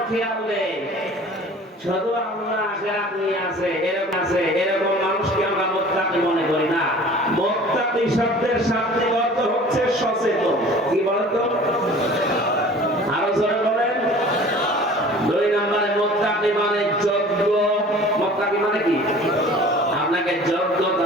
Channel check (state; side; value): normal; both; correlation 0.45